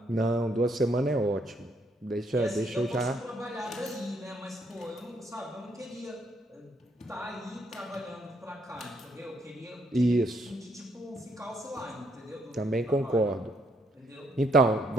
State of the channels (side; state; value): both; normal; correlation 0.72